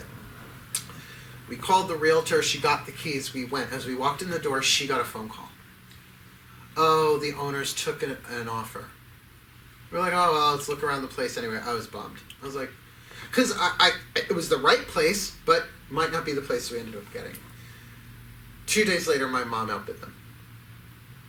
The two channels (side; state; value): both; identical; correlation 1.00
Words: We called the realtor. She got the keys. We went. As we walked in the door, she got a phone call. Oh, the owners took an offer. We're like, oh, well, let's look around the place anyway. I was bummed. I was like, because it was the right place, but might not be the place we ended up getting. 2 days later, my mom outbid them.